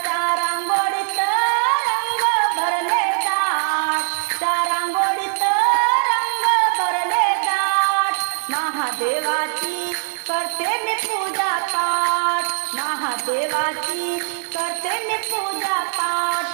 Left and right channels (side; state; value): left; silent; 59 dB below the other